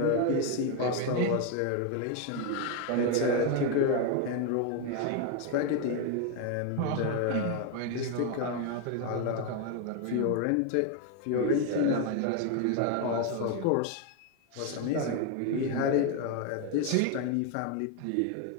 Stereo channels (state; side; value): different; both; correlation 0.01